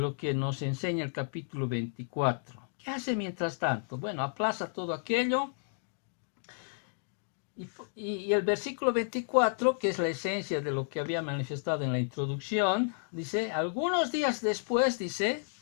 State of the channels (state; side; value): silent; right; digital silence